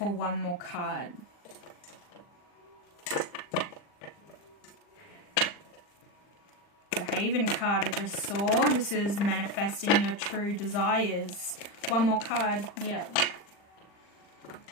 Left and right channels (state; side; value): late; right; 40 ms